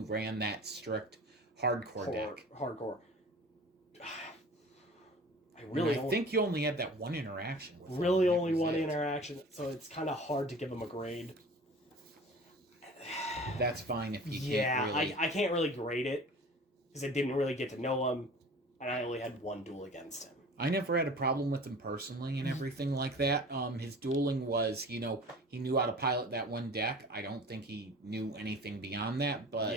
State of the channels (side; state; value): both; normal; correlation 0.41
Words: ran that strict hardcore deck. Hardcore. I think you only had that one interaction with him. Really only one interaction, so it's kind of hard to give him a grade. That's fine if you can't really... I can't really grade it, because I didn't really get to know him, and I only had one duel against him. I never had a problem with him personally and everything like that. His dueling was, he knew how to pilot that one deck. I don't think he knew anything beyond that, but...